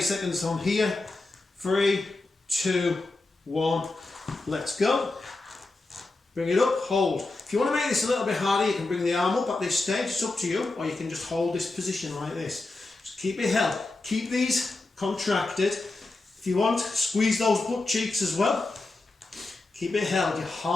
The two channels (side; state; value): right; quieter; 3.2 dB